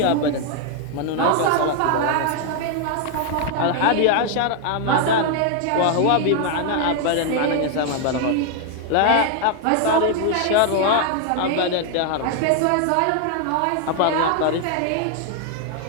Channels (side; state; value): both; different; correlation 0.00